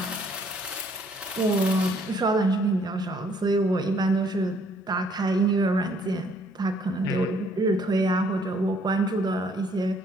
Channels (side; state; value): both; normal; correlation 0.64